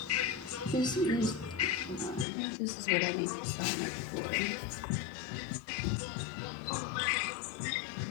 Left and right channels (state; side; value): drops out; right; at 2.2 s